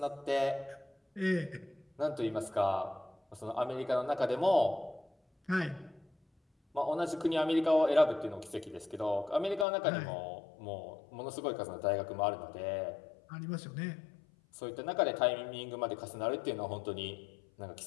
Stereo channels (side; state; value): right; drops out; at 9.7 s